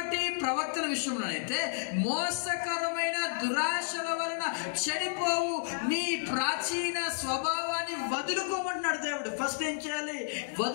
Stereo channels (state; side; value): silent; right; digital silence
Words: ప్రవక్తల విషయంలోనైతే మోసకరమైన దురాశల వలన చెడిపోవు మీ ప్రాచీన స్వభావాన్ని వదులుకోమంటున్నాడు దేవుడు. ఫస్ట్ ఏం చేయాలి?